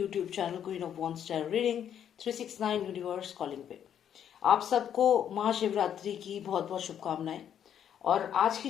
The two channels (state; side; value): quieter; right; 9.3 dB